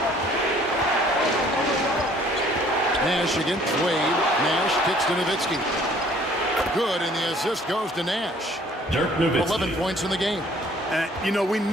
Nash against Wade. Nash kicks to Nowitzki. Good, and the assist goes to Nash. 11 points in the game. And, you know, we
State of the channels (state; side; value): normal; both; correlation 0.57